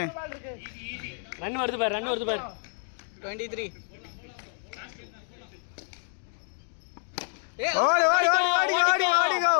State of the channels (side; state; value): right; silent; 57 dB below the other